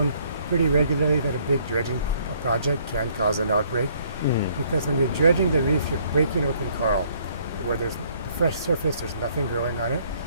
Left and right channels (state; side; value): inverted; both; correlation -0.64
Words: pretty regularly that a big dredging project can cause an outbreak. Because when you're dredging the reef, you're breaking open coral where there's fresh surface, there's nothing growing on it.